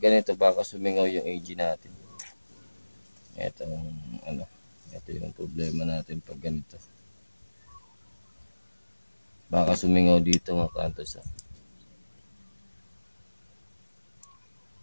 ganito baka sumingaw yung AG natin. Ito yung problema natin pag ganito. Baka sumingaw dito mga hunters.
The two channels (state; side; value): inverted; both; correlation -1.00